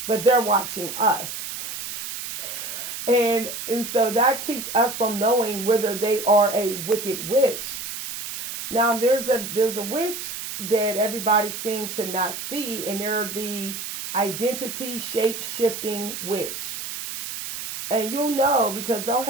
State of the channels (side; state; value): right; noise; hiss, 7 dB below the sound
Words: but they're watching us. And so that keeps us from knowing whether they are a wicked witch. Now there's a witch that everybody seems to not see, and they're the identity shape shifting witch. And you'll know because they'll